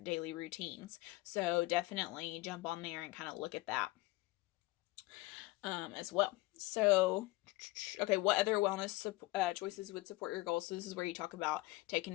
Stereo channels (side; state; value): right; quieter; 20.7 dB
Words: routines. So definitely jump on there and kind of look at that as well. So, okay, what other wellness choices would support your goals? So this is where you talk about